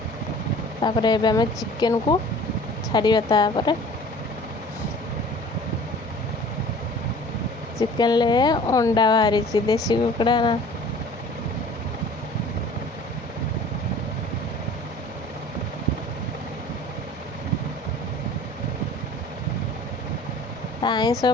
तापर एबे आम चिकेन को छाड़िया तापर चिकेन ले अंडा बाहरी देसी कुकड़ा ना आईस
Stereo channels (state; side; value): normal; both; correlation 0.46